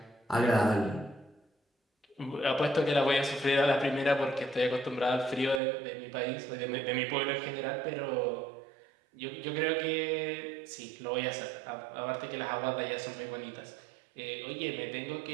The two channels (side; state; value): left; drops out; at 5.6 s